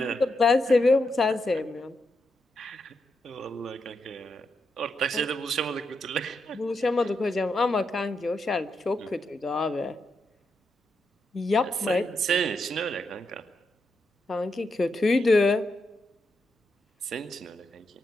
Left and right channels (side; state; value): both; normal; correlation 0.83